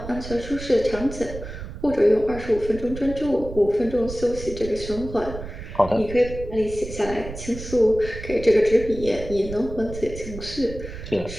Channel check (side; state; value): right; noise; rumble, 11 dB below the sound